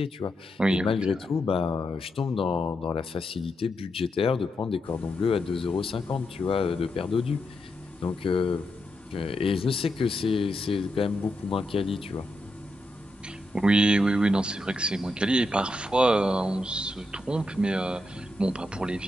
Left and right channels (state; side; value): normal; both; correlation 0.84